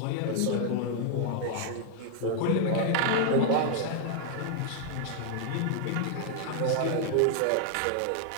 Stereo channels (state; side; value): different; both; correlation 0.00